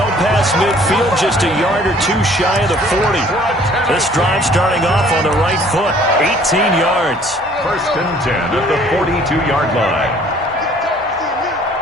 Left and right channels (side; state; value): both; normal; correlation 0.56